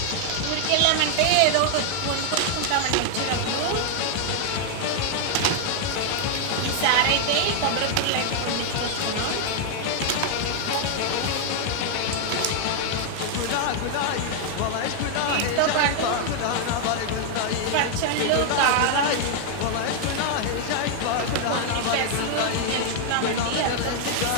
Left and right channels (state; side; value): different; both; correlation 0.00